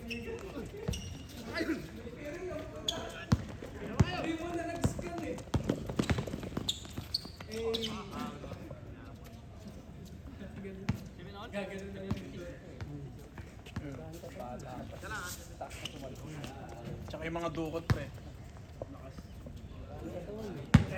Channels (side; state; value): both; identical; correlation 1.00